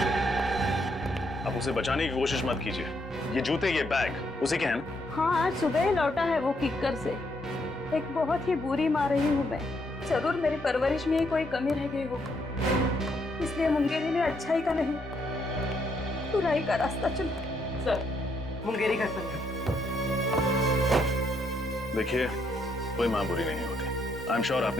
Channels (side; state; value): both; normal; correlation 0.75